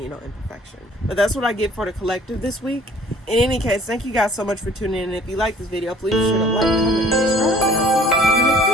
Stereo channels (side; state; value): both; normal; correlation 0.54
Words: know imperfection. But that's what I get for the collective this week. In any case, thank you guys so much for tuning in. And if you like this video, please be sure to like, comment, and subscribe. And I'll see